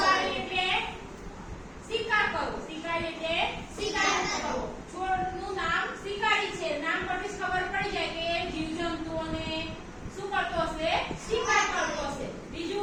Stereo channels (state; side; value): identical; both; correlation 1.00